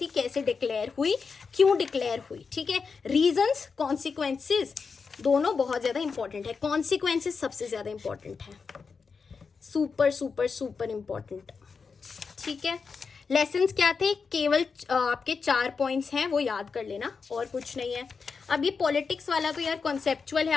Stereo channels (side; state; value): right; quieter; 5.2 dB